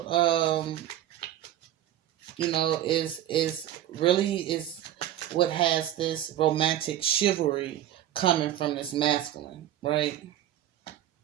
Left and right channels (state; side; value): quieter; left; 12.2 dB